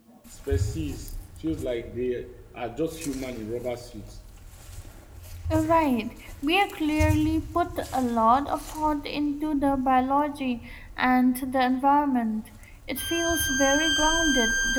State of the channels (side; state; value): both; identical; correlation 1.00